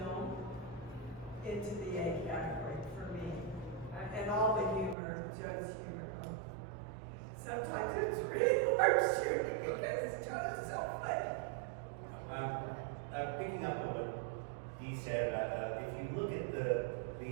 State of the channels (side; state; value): left; drops out; at 5.0 s